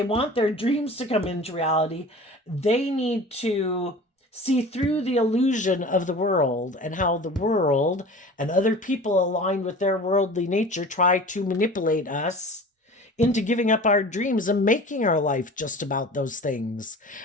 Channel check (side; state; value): both; normal; correlation 0.39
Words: want their dreams to come into reality, they need to see through the illusion of the world and how the world and other people aligned with their worldly nature try to manipulate us into giving up our dreams and making our life just about those things.